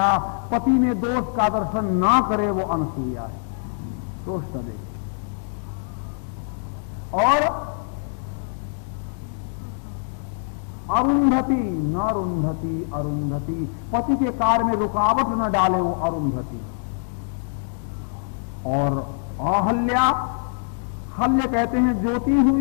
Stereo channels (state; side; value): silent; right; digital silence